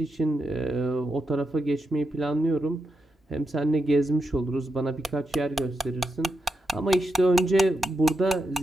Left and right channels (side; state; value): both; normal; correlation 0.86